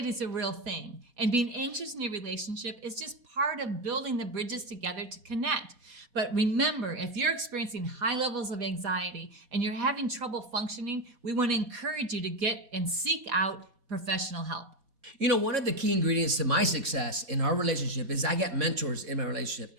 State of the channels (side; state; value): left; late; 4.2 ms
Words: is a real thing, and being anxious in your relationship is just part of building the bridges together to connect. But remember, if you're experiencing high levels of anxiety and you're having trouble functioning, we want to encourage you to get and seek out professional help. You know, one of the key ingredients to my success in our relationship is I got mentors in my relationship.